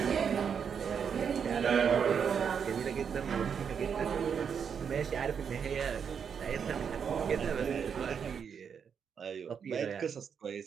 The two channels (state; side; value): quieter; left; 7.1 dB